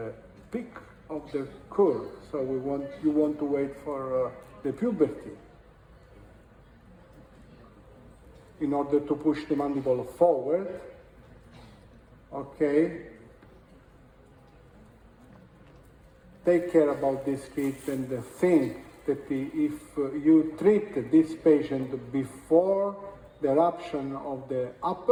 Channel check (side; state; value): both; identical; correlation 1.00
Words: peak of the curve. So you want to wait for the puberty in order to push the mandible forward. Okay. Take care about this kid and think that if you treat this patient before the eruption of the